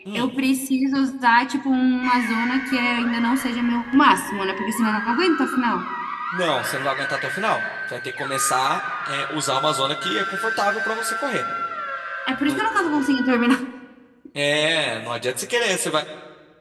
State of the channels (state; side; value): identical; both; correlation 1.00